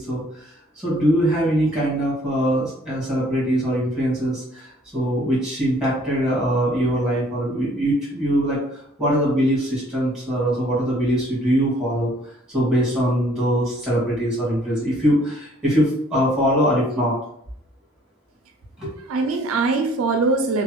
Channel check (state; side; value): normal; both; correlation 0.59